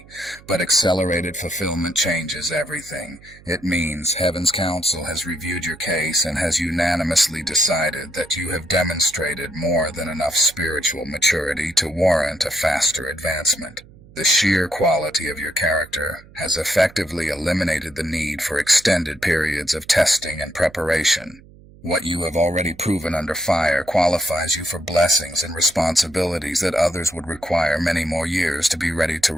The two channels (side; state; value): right; noise; hum, 23 dB below the sound